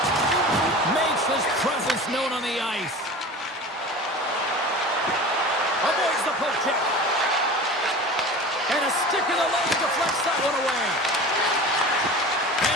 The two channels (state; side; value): normal; both; correlation 0.35